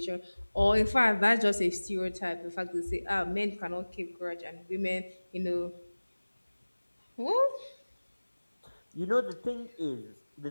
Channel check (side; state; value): both; inverted; correlation -1.00